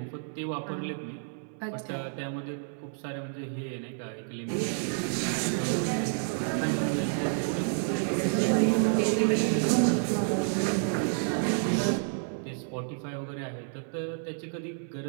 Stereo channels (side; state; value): left; silent; 58 dB below the other